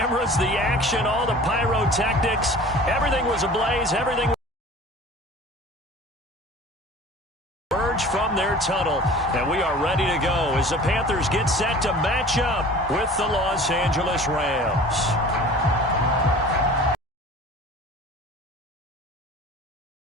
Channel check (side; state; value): both; normal; correlation 0.43